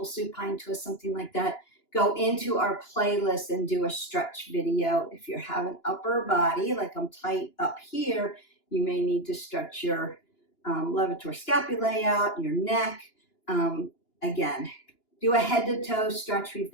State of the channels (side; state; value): right; late; 2.9 ms